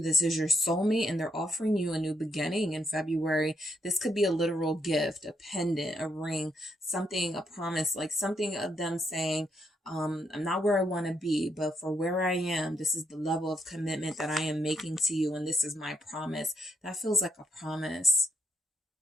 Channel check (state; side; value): normal; both; correlation 0.77